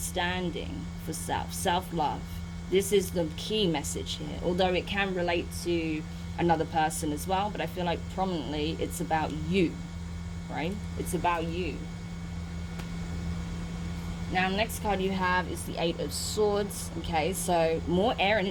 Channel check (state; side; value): identical; both; correlation 1.00